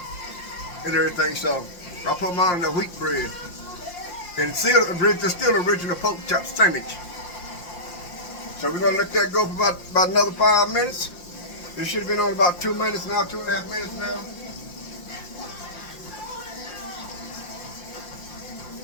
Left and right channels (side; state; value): right; late; 5.7 ms